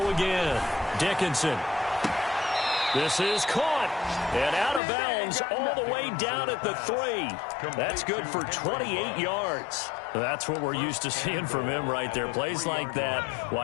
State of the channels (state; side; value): drops out; right; at 4.8 s